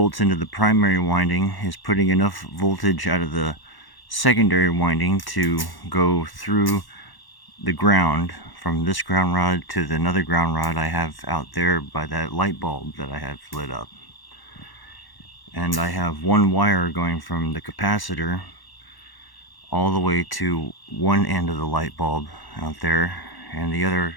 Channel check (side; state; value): right; late; 1.1 ms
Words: into the primary winding is putting enough voltage out of the secondary winding to go through the ground, from this ground rod to another ground rod I have out there by that light bulb that I have lit up. And I have one wire going from the capacitor all the way to one end of the light bulb out there, and the other